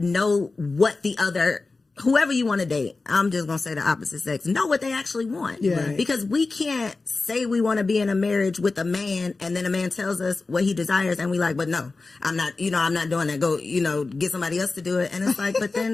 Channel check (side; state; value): right; quieter; 3.7 dB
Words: know what the other, whoever you want to date, I'm just going to say the opposite sex, know what they actually want. Yeah. Because we can't say we want to be in a marriage with a man and then a man tells us what he desires and we like, but no, I'm not doing that. Go, get somebody else to do it. And it's like, but